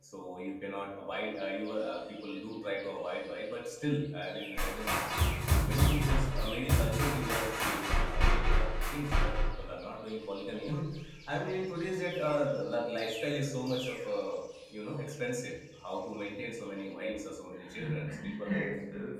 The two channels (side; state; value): both; identical; correlation 1.00